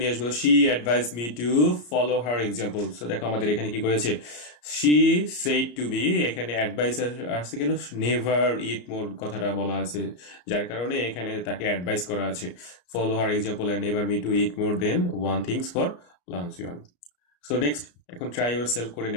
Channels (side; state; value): right; late; 34 ms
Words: নিয়ে আসবো। She advice me to follow her example. So দেখো আমাদের এখানে কি করেছে, শি সেড টু বি, এখানে অ্যাডভাইস আসছে কেন, নেভার ইট মোর কথাটা বলা আছে, যার কারণে এখানে তাকে অ্যাডভাইস করা আছে follow her example and never me to eat more than one things for lunch. So next, এখন ট্রাই ইউর সেলফ করে